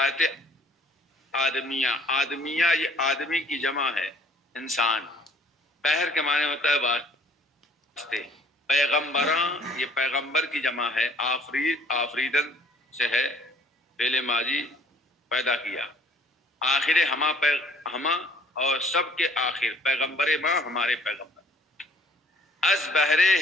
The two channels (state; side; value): normal; both; correlation 0.58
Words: آدمیہ، آدمیہ یہ آدمی کی جمع ہے، انسان۔ بہر کے معنی ہوتا ہے واسطے، پیغمبراں یہ پیغمبر کی جمع ہے، آفرید آفریدن سے ہے، فعل ماضی پیدا کیا، آخر ہما اور سب کے آخر، پیغمبر ما ہمارے پیغمبر۔ از بہر